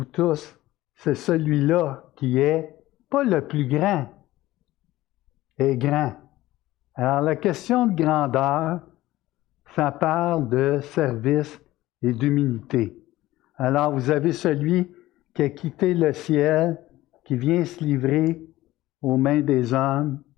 tous, c'est celui-là qui est pas le plus grand, est grand. Alors la question de grandeur, ça parle de service et d'humilité. Alors vous avez celui qui a quitté le ciel, qui vient se livrer aux mains des hommes,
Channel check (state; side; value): quieter; right; 16.6 dB